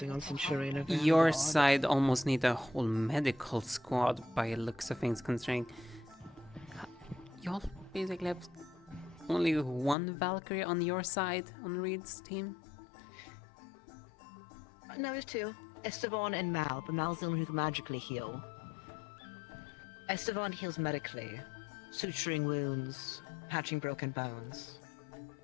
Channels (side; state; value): right; drops out; at 10.0 s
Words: on Centurion and Your Vanguard. side almost need a whole medical squad by the looks of things, considering y'all basically have only one Valkyrie on your side on Reed's team. No, there's two. Esteban and Mal, but Mal's the one who can magically heal. Esteban heals medically, suturing wounds, patching broken bones.